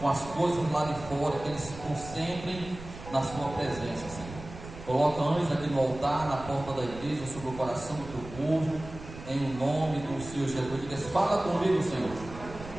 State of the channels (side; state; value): right; noise; rumble, 14 dB below the sound